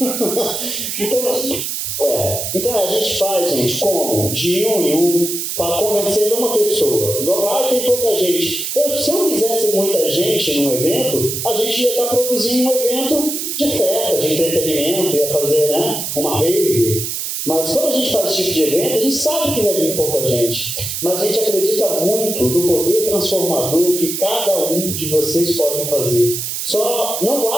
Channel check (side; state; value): right; noise; hiss, 4 dB below the sound